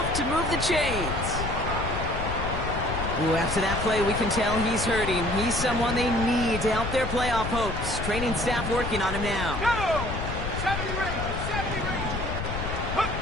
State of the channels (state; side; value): noise; left; rumble, 5 dB below the sound